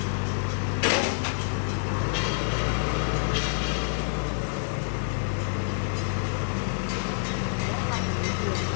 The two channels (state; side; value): silent; right; digital silence